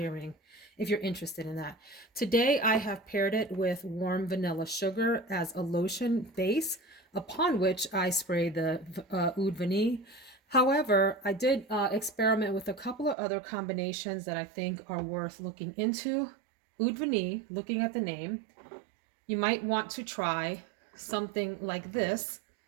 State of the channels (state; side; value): drops out; left; at 13.2 s